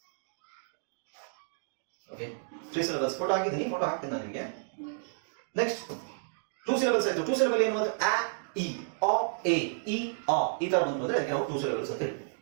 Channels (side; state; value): left; silent; digital silence